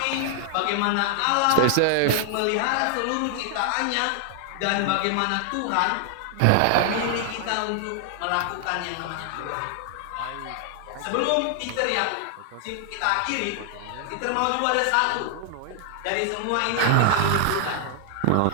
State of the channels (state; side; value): different; both; correlation 0.00